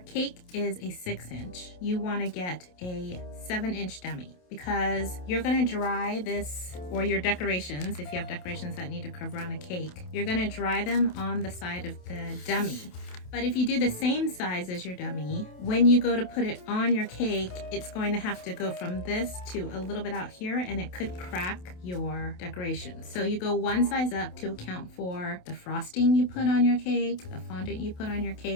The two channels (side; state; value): right; late; 28 ms